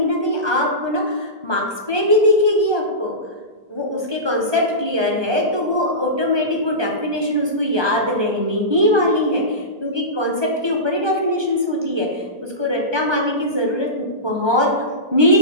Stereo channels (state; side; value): late; left; 1.2 ms